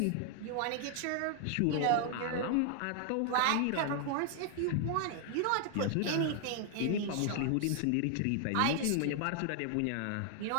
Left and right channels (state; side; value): different; both; correlation 0.00